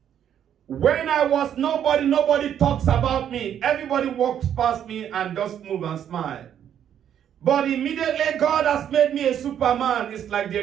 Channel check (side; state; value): left; quieter; 9.6 dB